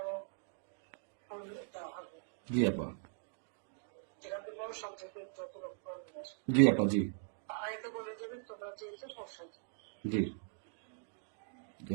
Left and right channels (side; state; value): left; silent; digital silence